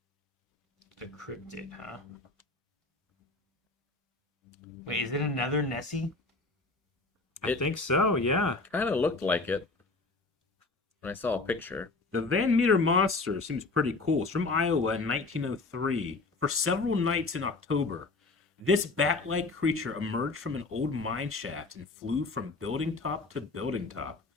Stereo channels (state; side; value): quieter; right; 3.6 dB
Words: The Cryptid, huh? Wait, is it another Nessie? I think so. Yeah. Kind of looked like it when I saw a picture. The Van Meter Monster seems pretty cool. It's from Iowa in 1903. For several nights in October, this bat-like creature emerged from an old mine shaft and flew from building top to building top.